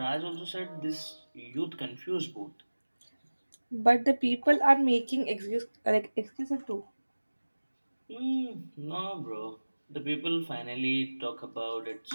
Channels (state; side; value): inverted; both; correlation -1.00